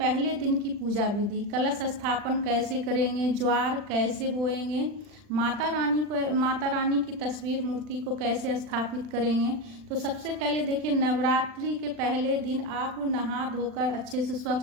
दिन की पूजा विधि, कलश स्थापन कैसे करेंगे, ज्वार कैसे बोएंगे, माता रानी की तस्वीर मूर्ति को कैसे स्थापित करेंगे। तो सबसे पहले देखिए, नवरात्रि के पहले दिन आप नहा धोकर अच्छे से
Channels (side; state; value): left; late; 40 ms